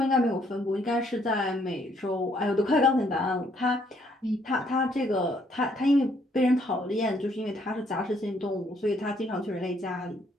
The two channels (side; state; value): both; normal; correlation 0.68